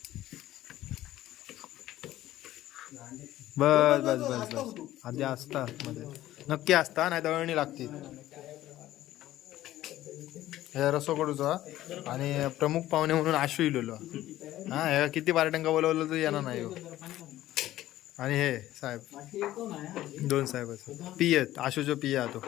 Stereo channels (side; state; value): right; quieter; 14.5 dB